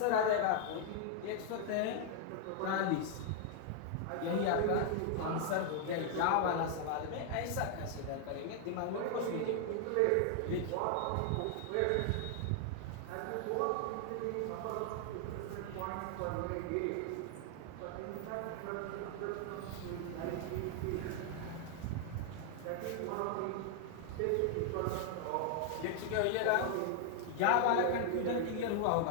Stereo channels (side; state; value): both; different; correlation 0.00